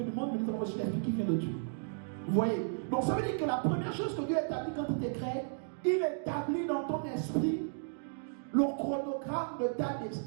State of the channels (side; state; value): left; silent; digital silence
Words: du monde, mais nous avons reçu l'esprit qui vient de Dieu. Vous voyez? Donc ça veut dire que la première chose que Dieu établit quand il te crée, il établit dans ton esprit le chronogramme de ta